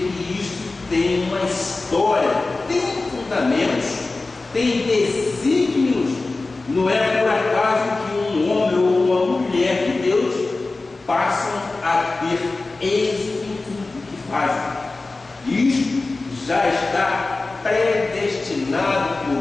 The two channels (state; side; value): quieter; right; 3.4 dB